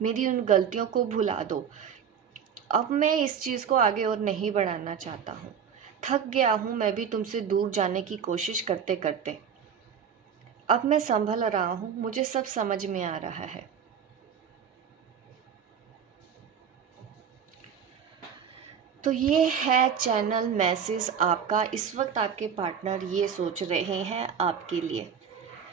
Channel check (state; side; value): quieter; left; 7.6 dB